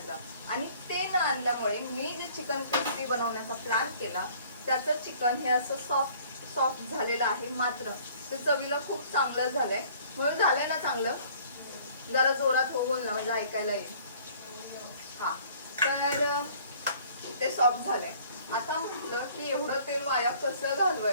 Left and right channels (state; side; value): inverted; both; correlation -0.55